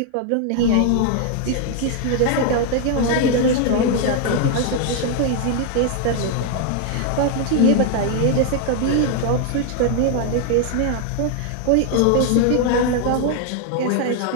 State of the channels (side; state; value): both; different; correlation 0.00